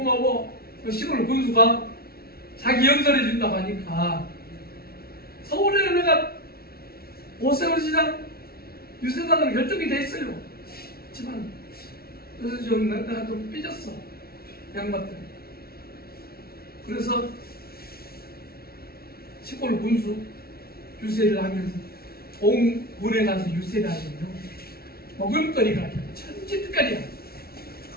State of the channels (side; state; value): right; late; 0.44 ms